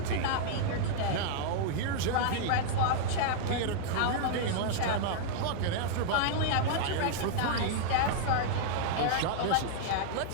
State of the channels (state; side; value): different; both; correlation -0.01